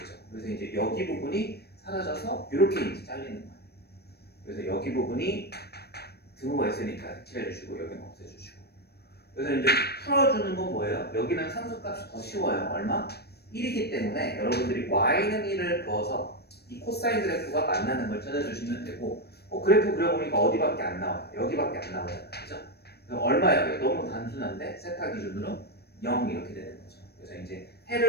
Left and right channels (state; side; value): late; right; 0.47 ms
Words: 그래서 이제 여기 부분이 사라져서 이렇게 이제 잘리는 거예요. 그래서 여기 부분이 등호가 있으니까 칠해주시고 여기는 없애주시고. 그래서 이제 풀어주는 건 뭐예요? 여기는 상수값이 더 쉬워요. 얼마? 1이기 때문에 여러분들이 y는 1을 그어서 이 코사인 그래프가 만나는 걸 찾아주시면 되고 그래프 그려보니까 어디밖에 안 나와요. 여기밖에 안 나오잖아요. 그죠? 얼마예요? 너무 단순한데 세타 기준으로 0 이렇게 되는 거죠. 그래서 이제